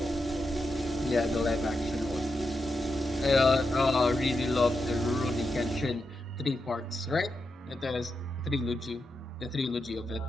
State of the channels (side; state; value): both; normal; correlation 0.87